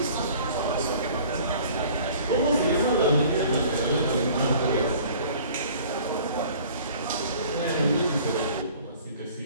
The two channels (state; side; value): inverted; both; correlation -0.50